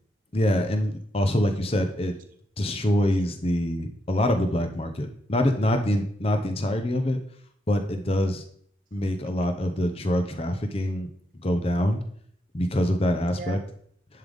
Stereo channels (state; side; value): normal; both; correlation 0.81